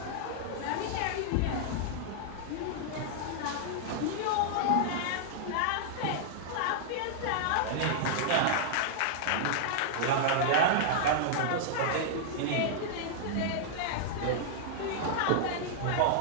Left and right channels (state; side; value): different; both; correlation -0.01